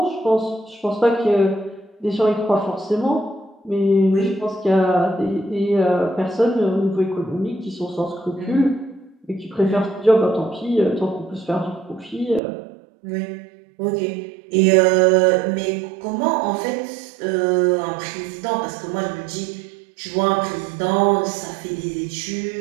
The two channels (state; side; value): drops out; left; at 12.4 s